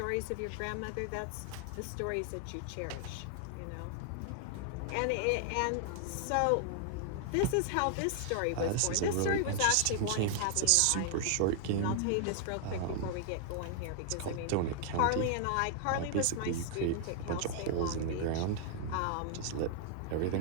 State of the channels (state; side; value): different; both; correlation 0.00